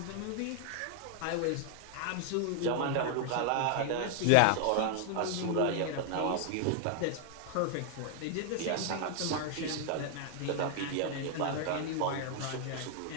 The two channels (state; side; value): different; both; correlation 0.00